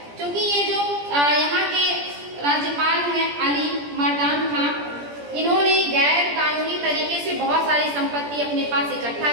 क्योंकि ये जो यहाँ के राज्यपाल हैं अली मर्दान खां, इन्होंने गैर कानूनी तरीके से बहुत सारी संपत्ति अपने पास इकट्ठा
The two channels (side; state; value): left; late; 17 ms